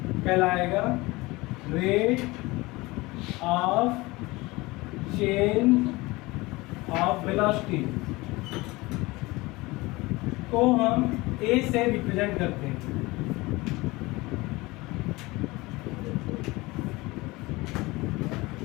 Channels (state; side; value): quieter; right; 21.9 dB